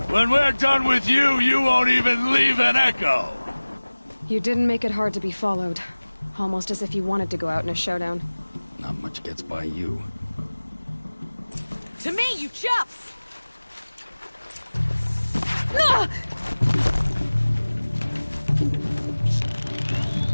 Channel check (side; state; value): both; inverted; correlation -1.00